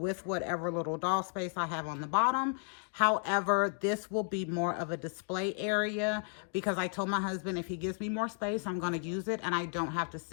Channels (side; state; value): right; silent; 55 dB below the other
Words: whatever little doll space I have on the bottom. However, this will be more of a display area because I told my husband if he gives me more space, I'm going to use it, and I don't have to